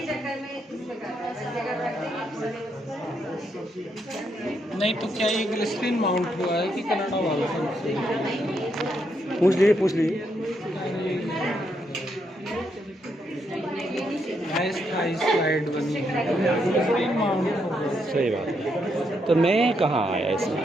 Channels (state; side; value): normal; both; correlation 0.78